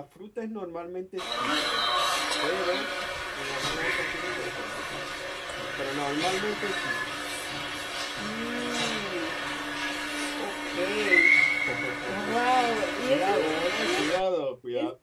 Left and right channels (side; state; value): both; identical; correlation 1.00